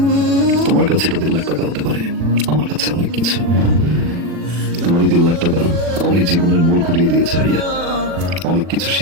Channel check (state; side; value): late; left; 40 ms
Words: তোমার কাছে এটা 3 লাখ টাকা হতে পারে, আমার কাছে অনেক কিছু। তোমার 2 লাখ টাকা আমার এই জীবনের মোড় ঘুরিয়ে দিয়েছে ভাইয়া। অনেক কিছু